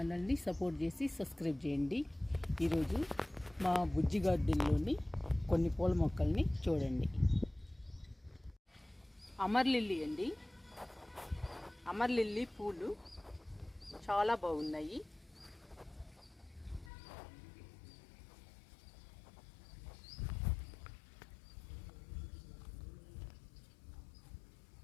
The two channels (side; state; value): right; drops out; at 16.9 s